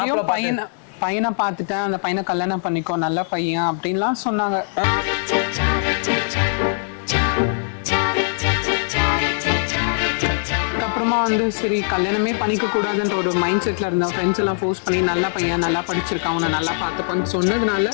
பையனை பார்த்துட்டேன், அந்த பையனை கல்யாணம் பண்ணிக்கோ, நல்ல பையன் அப்படின்லாம் சொன்னாங்க. அப்புறமா வந்து சரி கல்யாணமே பண்ணிக்க கூடாதுன்ற ஒரு மைண்ட் செட்ல இருந்த ஃப்ரெண்ட்ஸ் எல்லாம் ஃபோர்ஸ் பண்ணி நல்ல பையன், நல்லா படிச்சிருக்கான், அவனை நல்லா பார்த்துப்பான்னு சொன்னதுனால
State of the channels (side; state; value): right; silent; digital silence